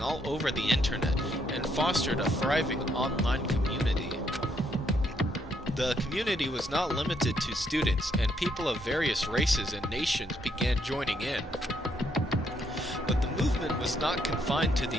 all over the internet and fostered a thriving online community. The community was not limited to students, and people of various races and nations began joining in. But the movement was not confined to the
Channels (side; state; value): both; normal; correlation 0.73